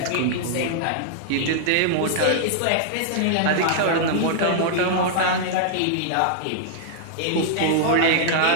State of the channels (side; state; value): both; different; correlation -0.01